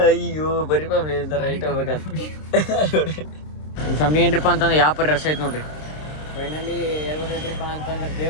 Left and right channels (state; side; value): late; right; 26 ms